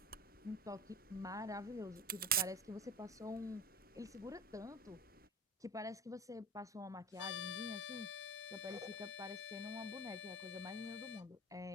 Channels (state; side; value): normal; both; correlation 0.31